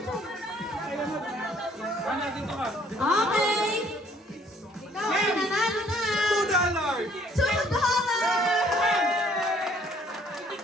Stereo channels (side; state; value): both; normal; correlation 0.61